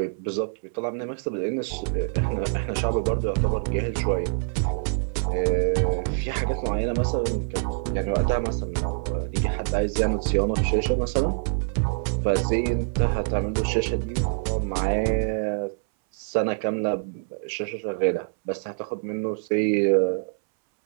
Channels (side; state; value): left; silent; 60 dB below the other